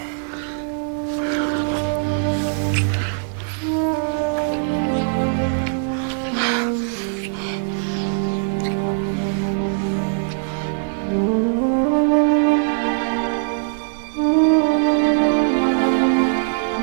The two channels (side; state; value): left; silent; 60 dB below the other